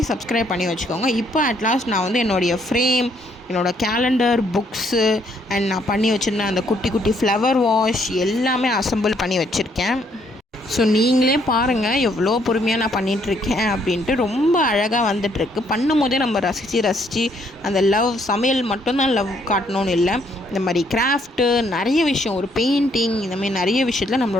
சப்ஸ்கிரைப் பண்ணி வச்சுக்கோங்க. இப்போ அட்லாஸ்ட் நான் வந்து என்னுடைய ஃப்ரேம், என்னோடய கேலண்டர், புக்ஸு அண்ட் நான் பண்ணி வச்சுருந்தேன் அந்த குட்டி குட்டி ஃப்ளவர் வாஷ் எல்லாமே அசம்பிள் பண்ணி வச்சுருக்கேன். ஸோ நீங்களே பாருங்கள் எவ்வளோ பொறுமையாக நான் பண்ணிகிட்ருக்கேன் அப்படின்ட்டு. ரொம்ப அழகாக வந்துட்டுருக்கு. பண்ணும் போதே நம்ம ரசித்து அந்த லவ் சமையல் மட்டும்தான் லவ் காட்டணும்னு இல்லை, இந்த மாதிரி கிராஃப்ட்டு நிறைய விஷயம், ஒரு பெயிண்டிங், இந்த மாதிரி நிறைய விஷயத்தில்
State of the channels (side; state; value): both; normal; correlation 0.69